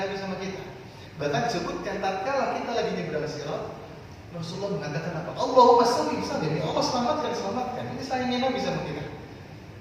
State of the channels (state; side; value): identical; both; correlation 1.00